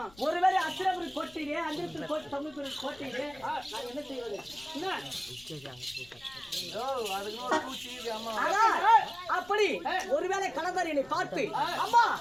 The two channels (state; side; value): noise; left; rumble, 25 dB below the sound